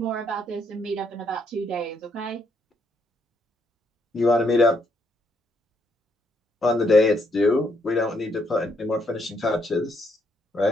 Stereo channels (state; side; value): normal; both; correlation 0.73